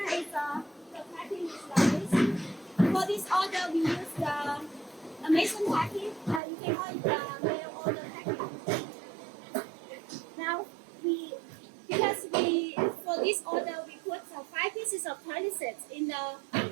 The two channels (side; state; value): left; drops out; at 6.4 s